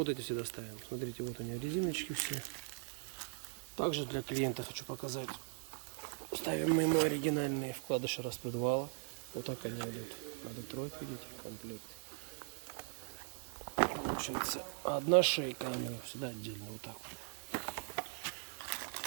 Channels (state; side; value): silent; left; 51 dB below the other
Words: вот эти всегда ставим. Смотрите, вот они резиночки все. Также для клиента хочу показать. Ставим мы ему оригинальные вкладыши распредвала. Вот так они идут на Детройт, видите, комплект. Получается одна шейка, всегда отдельно, вот так вот.